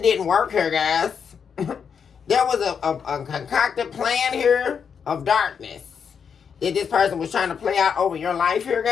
work here, guys. There was a concocted plan here of darkness that this person was trying to play out over your life here,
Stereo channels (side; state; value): right; quieter; 6.8 dB